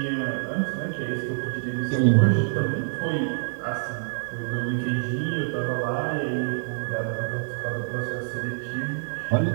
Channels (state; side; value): silent; left; 61 dB below the other